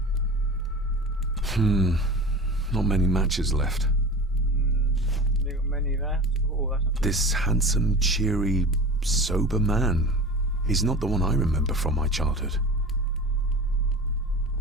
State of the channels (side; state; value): both; normal; correlation 0.34